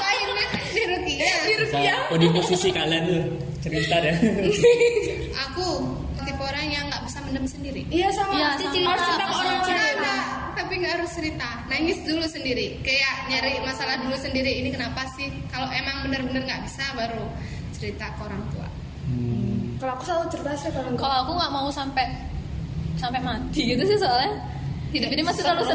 Di Rukia. Oh, di posisi kalian tuh cerita ya. Aku tipe orang yang nggak bisa mendem sendiri. Iya sama. Iya, Harus sama. cerita ke orang lain. Ada, tapi nggak harus cerita. Nangis dulu sendiri. Kayak nyari masalah dulu sendiri. Ini kenapa sih? Kalau emang bener-bener nggak bisa, baru cerita ke orang tua. Kalau aku selalu cerita sih kalau enggak. Kalau aku nggak mau sampai mati gitu sih soalnya. Hidup ini masih terlalu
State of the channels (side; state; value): both; identical; correlation 1.00